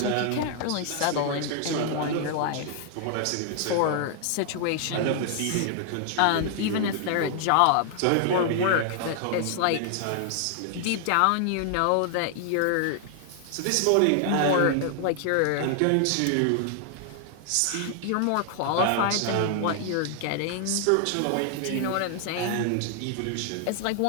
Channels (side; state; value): both; different; correlation 0.00